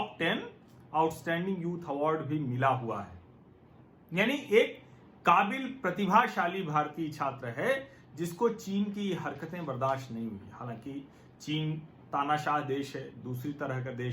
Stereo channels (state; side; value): identical; both; correlation 1.00